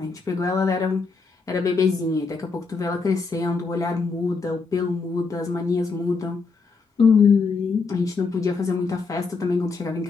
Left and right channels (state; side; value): quieter; right; 4.5 dB